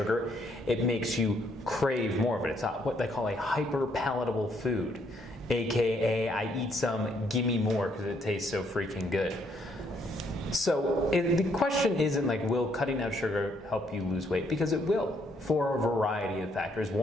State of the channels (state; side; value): normal; both; correlation 0.70